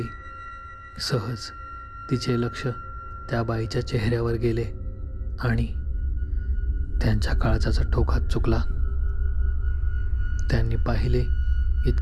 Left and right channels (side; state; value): both; identical; correlation 1.00